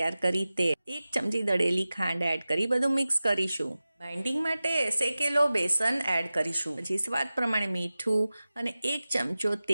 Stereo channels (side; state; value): both; inverted; correlation -0.96